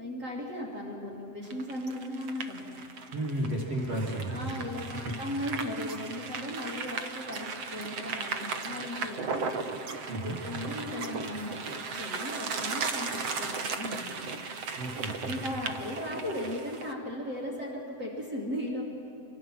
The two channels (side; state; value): left; late; 7.7 ms